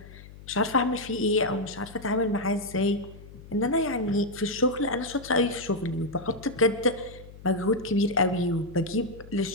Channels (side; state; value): left; noise; hum, 18 dB below the sound